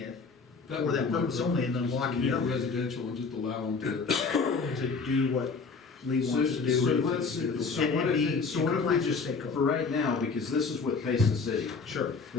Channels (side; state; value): right; quieter; 4.6 dB